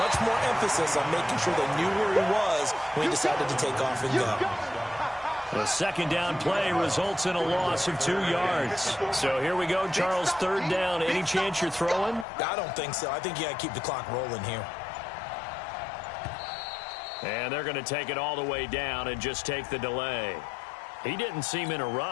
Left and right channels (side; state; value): right; drops out; at 12.2 s